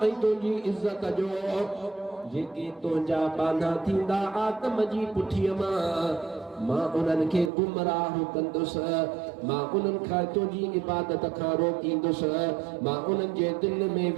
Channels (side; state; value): left; drops out; at 7.5 s